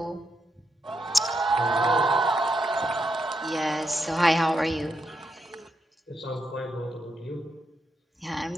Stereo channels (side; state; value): both; normal; correlation 0.82